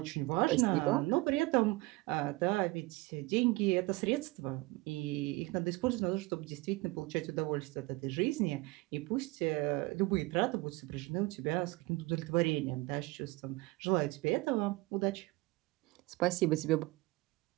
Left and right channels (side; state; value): left; quieter; 22.2 dB